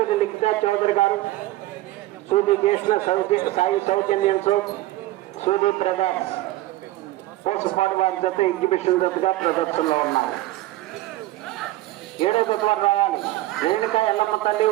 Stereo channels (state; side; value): quieter; left; 16.7 dB